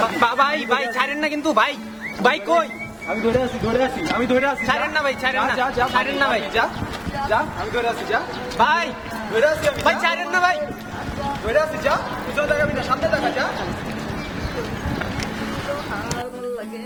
ভাই, ভাই ছাড়েন না কিন্তু ভাই, ভাই কই? আমি ধরে আছি ছাড়েন না ভাই, ছাড়েন না, ছাড়েন না ভাই, আমি ধরে আছি, যা ভাই ধরে আছি, ভাই ছাড়েন না ভাই, ধরে আছি, যা পিছনে দেখাবি না, সামনে দেখা, যা। আর ভাল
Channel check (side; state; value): both; identical; correlation 1.00